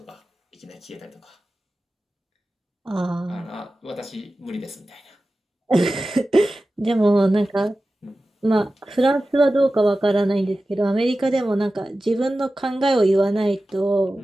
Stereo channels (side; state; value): both; normal; correlation 0.95